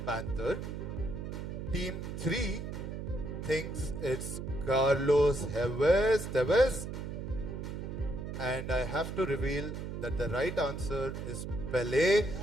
Panther. Team 3 thinks it's Carlos Tevez. And I have to reveal that the right answer is Pele.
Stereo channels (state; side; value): noise; right; hum, 6 dB below the sound